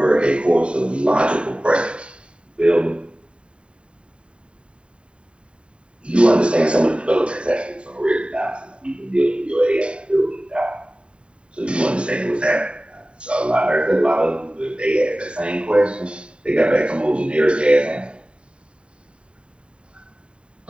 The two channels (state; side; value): late; left; 0.055 ms